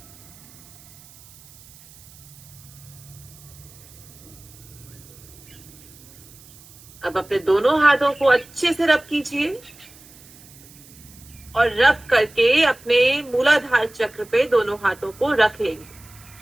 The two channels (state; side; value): noise; right; hiss, 23 dB below the sound